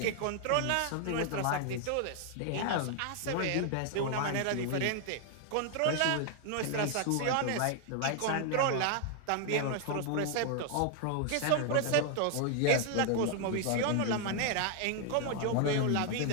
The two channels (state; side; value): different; both; correlation 0.00